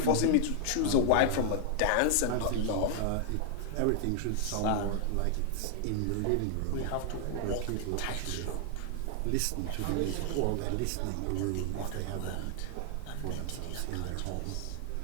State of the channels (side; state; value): both; different; correlation 0.00